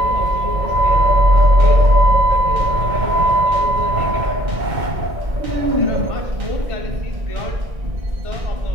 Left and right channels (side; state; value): left; late; 2.2 ms